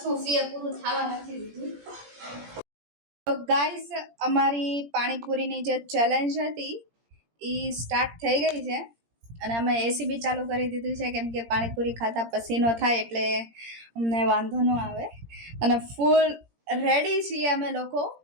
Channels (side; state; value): left; late; 17 ms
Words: પૂરું થવા નથી દીધું. ગાઈસ, અમારી પાણીપુરીની જે ચેલેન્જ હતી એ સ્ટાર્ટ થઈ ગઈ છે અને અમે એસી બી ચાલુ કરી દીધું છે, કેમ કે પાણીપુરી ખાતા પસીનો થાય એટલે અમને વાંધો ન આવે. અને ફૂલ રેડી છીએ અમે લોકો